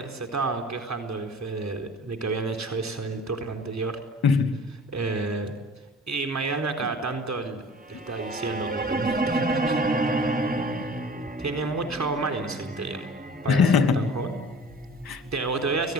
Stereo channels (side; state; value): both; normal; correlation 0.44